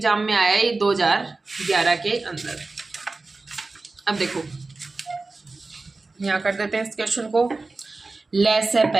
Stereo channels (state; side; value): quieter; left; 3.6 dB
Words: में आया ये 2011 के अंदर। अब देखो यहां कर देते हैं इस क्वेश्चन को, लहसे